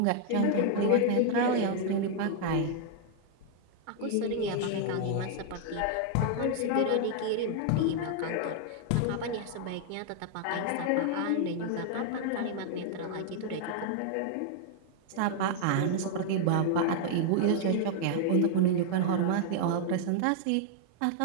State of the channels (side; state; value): both; different; correlation 0.00